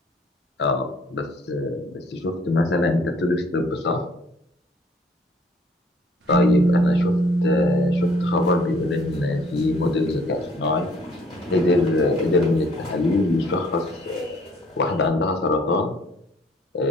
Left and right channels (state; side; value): normal; both; correlation 0.59